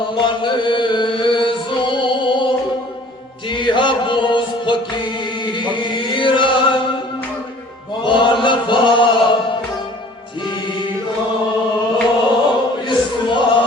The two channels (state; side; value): normal; both; correlation 0.51